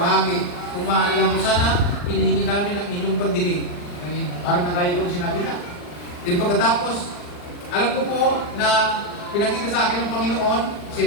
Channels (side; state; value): right; late; 40 ms